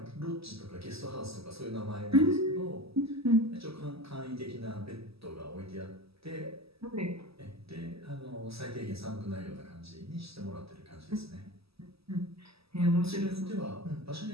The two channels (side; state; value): left; late; 0.77 ms